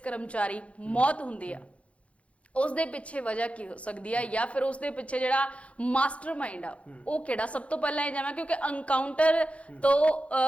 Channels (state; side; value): late; right; 0.063 ms